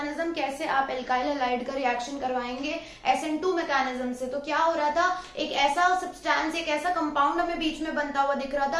कैसे आप alkyl halide का reaction करवाएंगे SN2 mechanism से. तो क्या हो रहा था, एक ऐसा सब्सटेंस, एक ऐसा कंपाउंड हमें बीच में बनता हुआ दिख रहा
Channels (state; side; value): identical; both; correlation 1.00